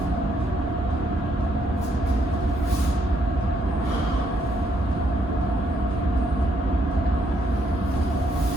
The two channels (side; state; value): both; normal; correlation 0.73